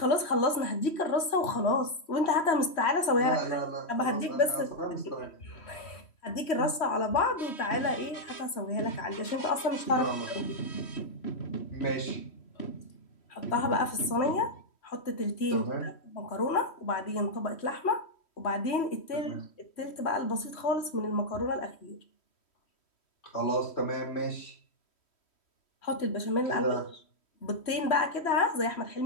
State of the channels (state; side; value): late; right; 3.1 ms